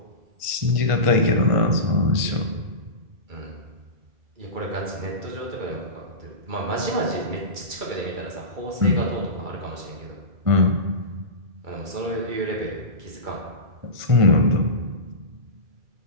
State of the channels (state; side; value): late; left; 1.5 ms